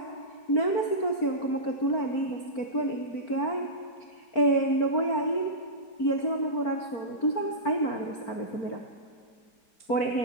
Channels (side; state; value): right; late; 4.4 ms